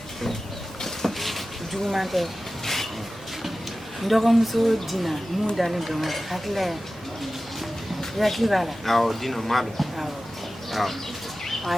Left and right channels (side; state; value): both; normal; correlation 0.95